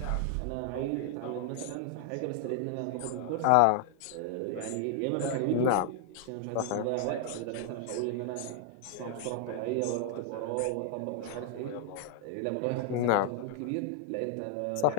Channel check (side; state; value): both; different; correlation 0.00